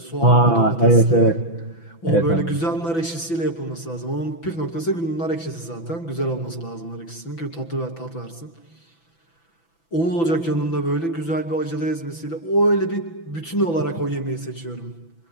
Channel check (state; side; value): late; right; 6.0 ms